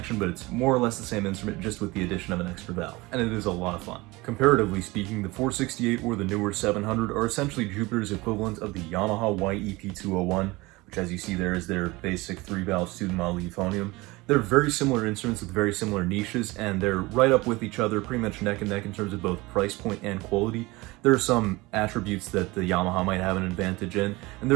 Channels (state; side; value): quieter; left; 22.2 dB